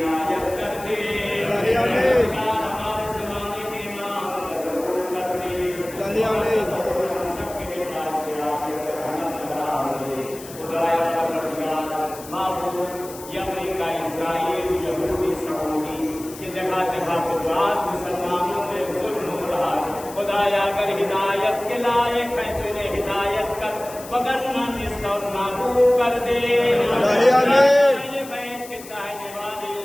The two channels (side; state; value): left; noise; hiss, 16 dB below the sound